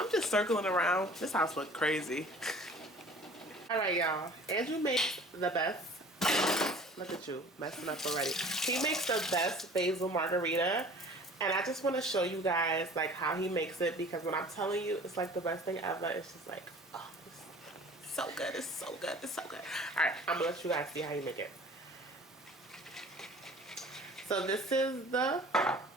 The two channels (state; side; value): normal; both; correlation 0.47